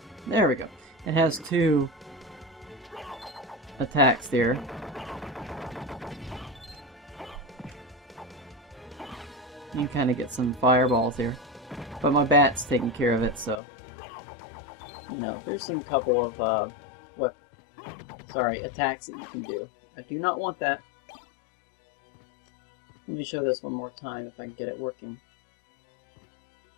there we go. It has two attacks there. You can kind of get some fireballs here. But my bat's taking care of it, so... You know, there's some couple of, attacks that you can do. I do not want that. Let me show this one more time if I can get it working.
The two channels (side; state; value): right; drops out; at 13.6 s